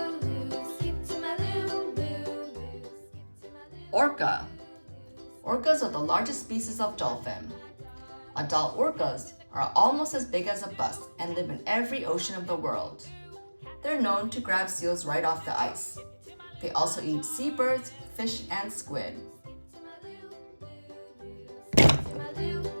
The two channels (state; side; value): inverted; both; correlation -1.00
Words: loo, skip to my loo, loo, loo, skip to my loo. Orca. Orcas are the largest species of dolphin. Adult orcas are almost as big as a bus and live in every ocean of the world. They're known to grab seals right off the ice. They also eat seabirds, fish, and squid.